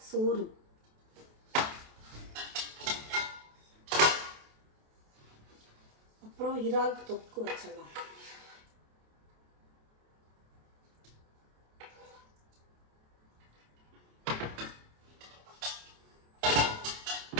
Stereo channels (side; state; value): left; late; 28 ms